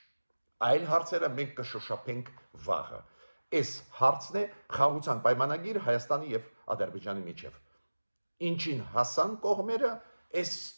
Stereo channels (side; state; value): both; inverted; correlation -1.00